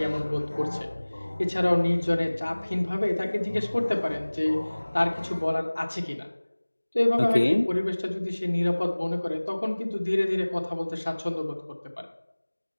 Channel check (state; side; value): inverted; both; correlation -1.00